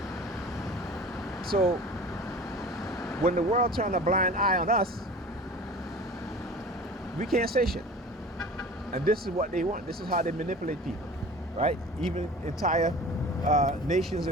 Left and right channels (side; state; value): both; normal; correlation 0.40